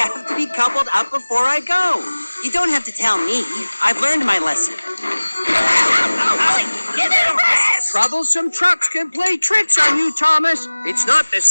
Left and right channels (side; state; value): both; inverted; correlation -1.00